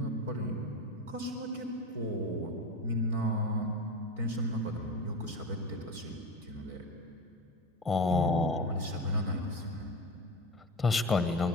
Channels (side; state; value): both; normal; correlation 0.26